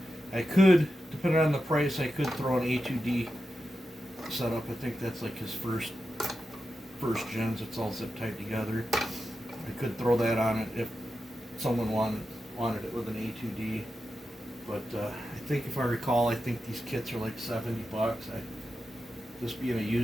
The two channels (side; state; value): both; normal; correlation 0.90